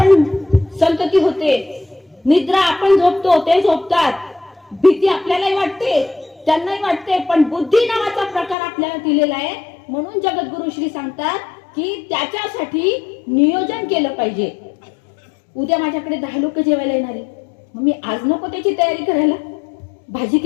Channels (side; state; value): right; drops out; at 8.6 s